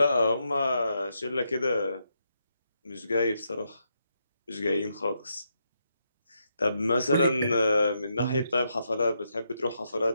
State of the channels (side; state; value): both; inverted; correlation -0.81